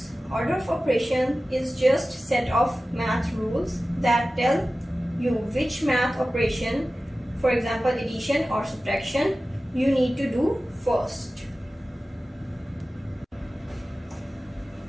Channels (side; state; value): both; normal; correlation 0.96